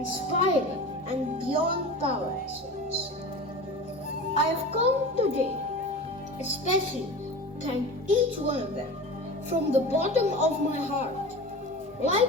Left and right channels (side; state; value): both; normal; correlation 0.33